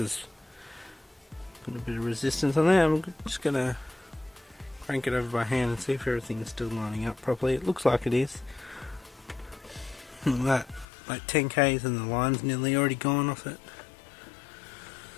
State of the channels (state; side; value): drops out; right; at 10.9 s